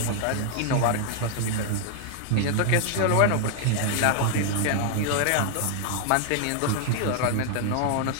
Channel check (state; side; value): different; both; correlation 0.00